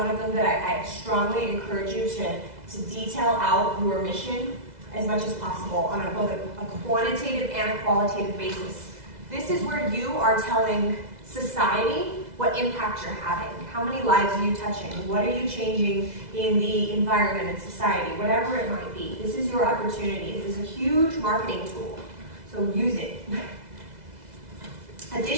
of them that I strongly encourage you to detail out your mission as much as possible on both a quantitative and a qualitative basis. This is where you are telling society what impact you're having. How many lives are you touching? What are you changing in the environment and society? Whatever it might be. This is your opportunity. This is a huge marketing tool. So use it.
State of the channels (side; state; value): left; late; 2.0 ms